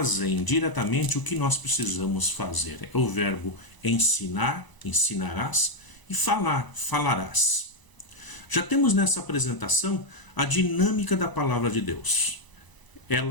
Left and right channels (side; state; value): right; late; 1.0 ms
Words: diretamente o que nós precisamos fazer. É o verbo ensinar, ensinarás, e falar, falarás. Já temos nessa apresentação a dinâmica da palavra de Deus.